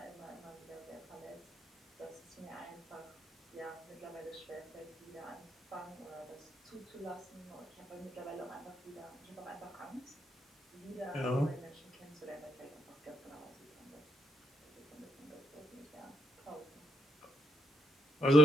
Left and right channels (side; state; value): both; normal; correlation 0.72